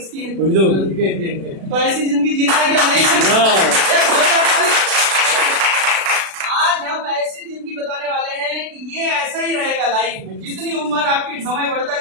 है? तो ऐसी जिंदगी जीना है क्या? नहीं। आज हम ऐसी जिंदगी बताने वाले हैं कि ये ऐसा ही रहेगा लाइफ में। जितनी उम्र आपकी समय बढ़ता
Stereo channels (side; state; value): left; late; 36 ms